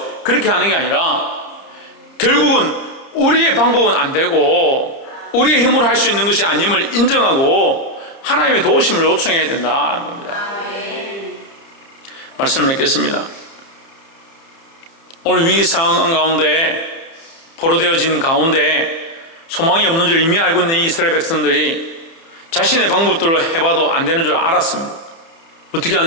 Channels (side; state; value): right; late; 30 ms